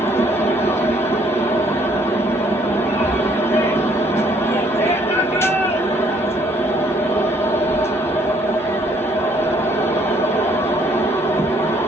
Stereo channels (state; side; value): normal; both; correlation 0.64